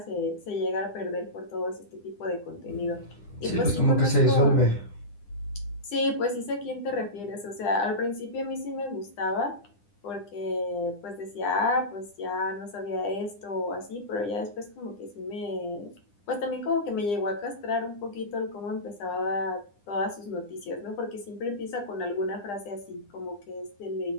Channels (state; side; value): late; right; 9.9 ms